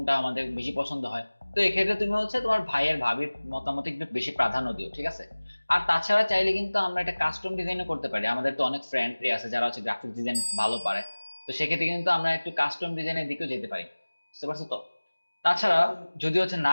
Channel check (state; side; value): inverted; both; correlation -1.00